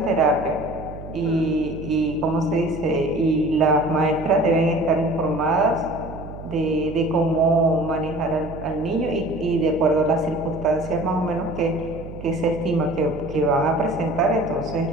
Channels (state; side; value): noise; right; hum, 13 dB below the sound